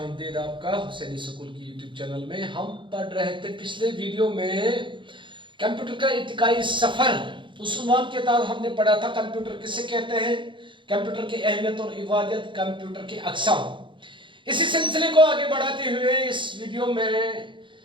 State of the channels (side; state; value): left; late; 0.24 ms